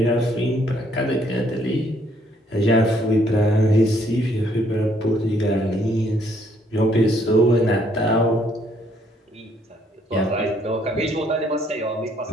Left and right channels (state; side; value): normal; both; correlation 0.67